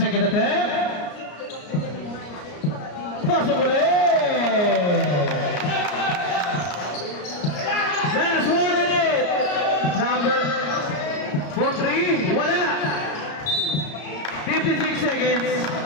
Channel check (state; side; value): late; right; 33 ms